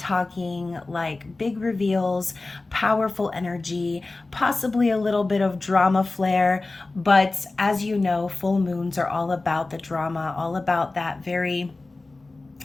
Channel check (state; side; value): quieter; right; 3.3 dB